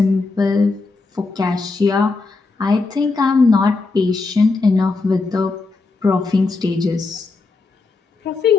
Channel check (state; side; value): quieter; right; 3.8 dB